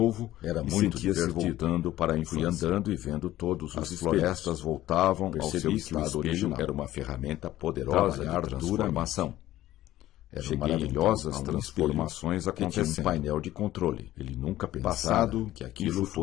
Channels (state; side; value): quieter; right; 14.6 dB